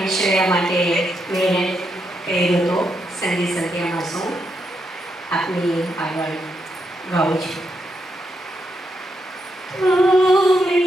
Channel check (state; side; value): normal; both; correlation 0.81